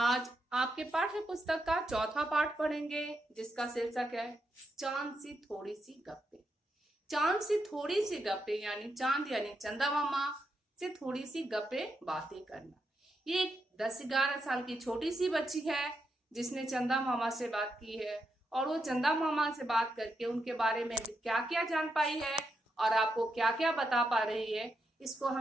आपके पाठ्य पुस्तक का चौथा पाठ पढ़ेंगे, जिसका शीर्षक है चांद सी थोड़ी सी गप्पे। चांद सी थोड़ी सी गप्पे यानी चांद यानी चंदा मामा से थोड़ी सी गप्पे बातें करना। ये एक 10-11 साल की छोटी सी बच्ची है जिसने चंदा मामा से बात की है, और वो चंदा मामा से बात करके उनके बारे में क्या क्या जान पाई है और आपको क्या क्या बता पा रही है, इसको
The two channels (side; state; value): both; normal; correlation 0.83